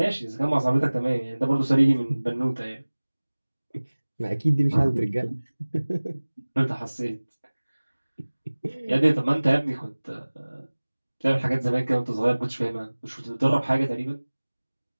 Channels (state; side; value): inverted; both; correlation -1.00